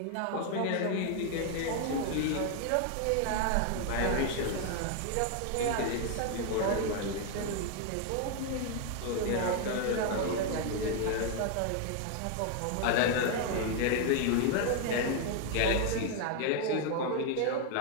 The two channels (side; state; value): both; different; correlation 0.00